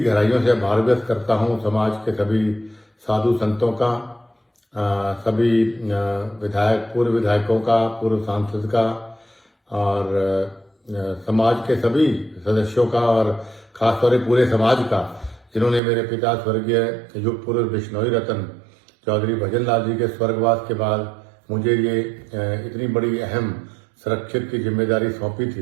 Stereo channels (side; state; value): left; drops out; at 15.8 s